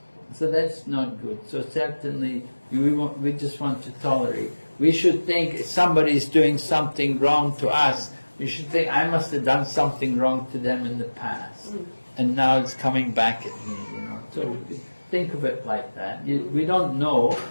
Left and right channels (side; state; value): both; inverted; correlation -1.00